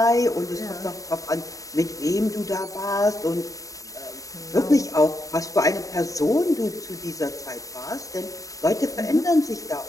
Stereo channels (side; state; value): right; late; 0.16 ms